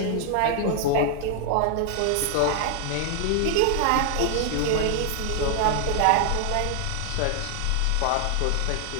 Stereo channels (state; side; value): different; both; correlation 0.00